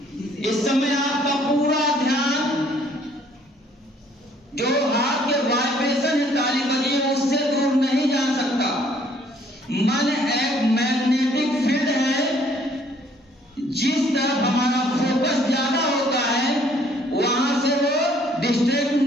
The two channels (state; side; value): normal; both; correlation 0.62